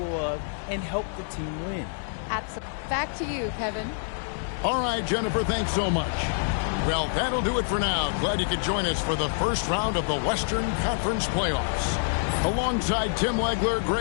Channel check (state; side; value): silent; right; digital silence